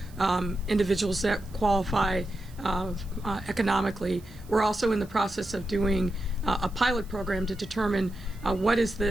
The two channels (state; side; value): noise; right; hiss, 25 dB below the sound